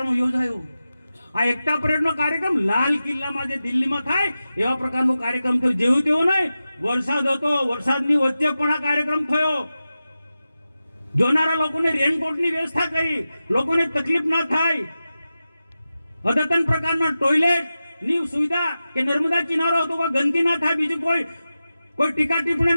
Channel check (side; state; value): both; inverted; correlation -0.93